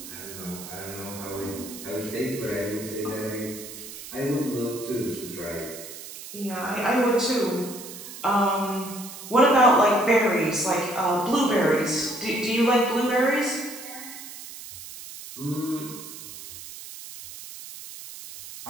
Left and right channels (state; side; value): noise; right; hiss, 13 dB below the sound